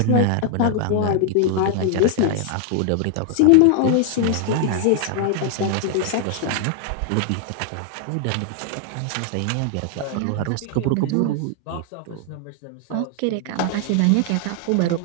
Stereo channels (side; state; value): both; different; correlation 0.00